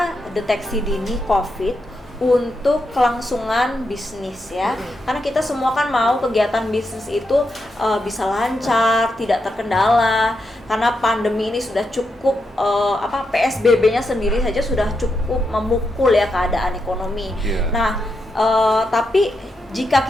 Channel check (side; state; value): both; normal; correlation 0.84